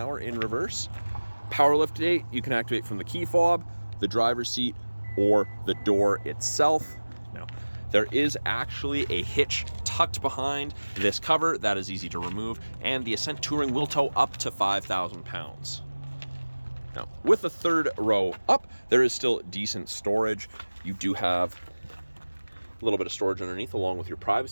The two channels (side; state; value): both; inverted; correlation -1.00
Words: in reverse. Power liftgate you can activate from the key fob, the driver's seat, or the door itself. Now, there is actually a hitch tucked behind this cover that is easy to remove, and the Ascent Touring will tow up to 5,000 pounds. Now, with the third row up, there is still decent storage. You do have a little bit of storage underneath along with your